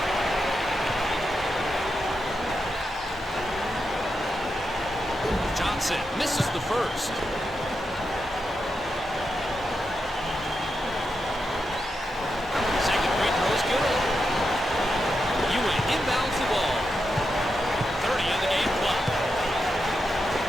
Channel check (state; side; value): normal; both; correlation 0.86